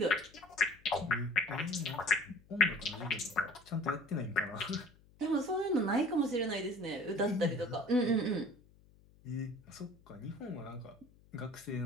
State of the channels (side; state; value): left; noise; hum, 27 dB below the sound